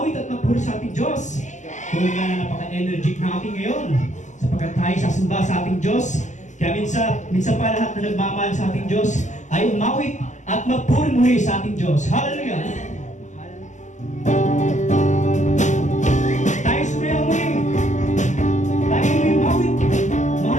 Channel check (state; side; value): late; right; 0.35 ms